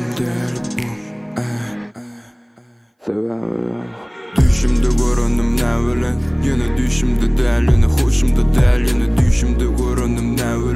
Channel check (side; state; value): both; identical; correlation 1.00